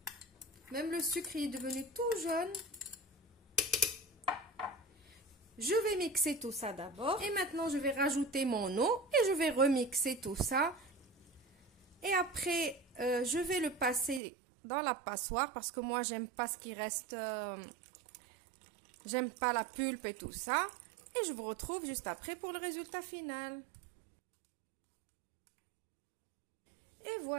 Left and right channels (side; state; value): left; drops out; at 14.2 s